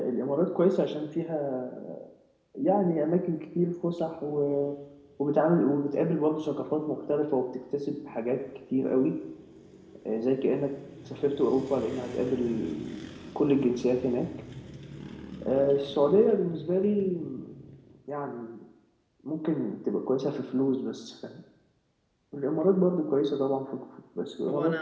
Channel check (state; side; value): identical; both; correlation 1.00